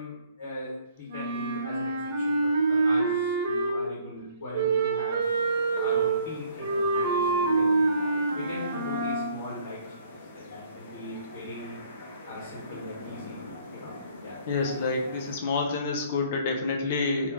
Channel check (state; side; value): inverted; both; correlation -0.60